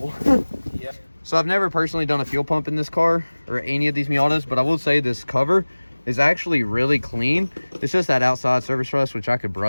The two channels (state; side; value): inverted; both; correlation -1.00